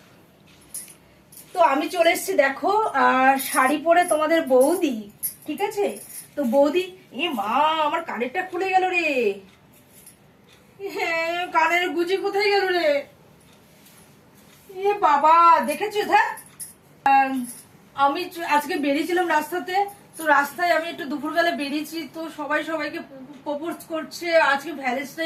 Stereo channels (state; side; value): identical; both; correlation 1.00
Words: তো আমি চলে এসেছি দেখো শাড়ি পরে তোমাদের বৌদি, ঠিক আছে? তো বৌদি, এ মা আমার কানেরটা খুলে গেল রে। হ্যাঁ, কানের গুজি কোথায় গেল রে? এ বাবা, দেখেছো? আমি আজকে বেরিয়েছিলাম রাস্তাতে, তো রাস্তায় আমি একটু দুপুরবেলা বেরিয়েছি, তো সবাই সবাইকে প্রপোজ করছে, আজকে